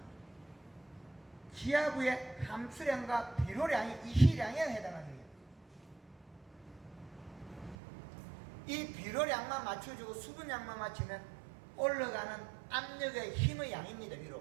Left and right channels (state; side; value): drops out; left; at 7.8 s